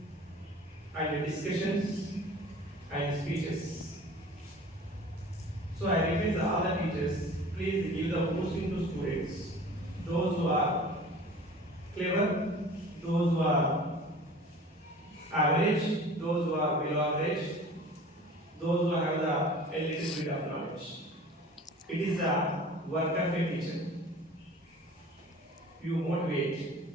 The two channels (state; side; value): normal; both; correlation 0.43